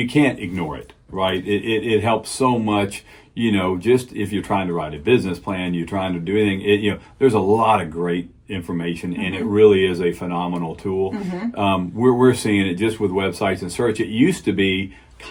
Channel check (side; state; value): both; identical; correlation 1.00